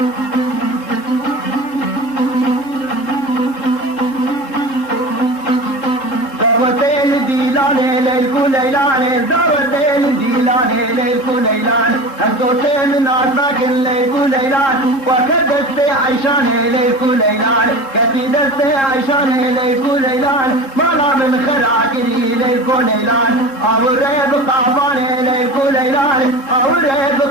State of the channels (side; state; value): right; late; 3.7 ms